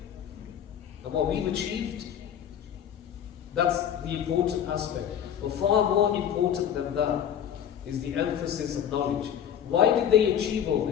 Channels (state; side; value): quieter; right; 9.3 dB